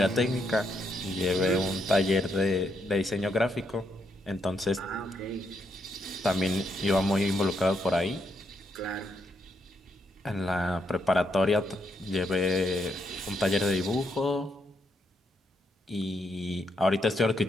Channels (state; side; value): normal; both; correlation 0.78